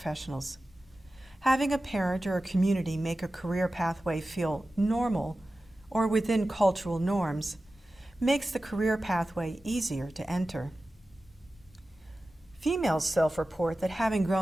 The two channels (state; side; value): normal; both; correlation 0.95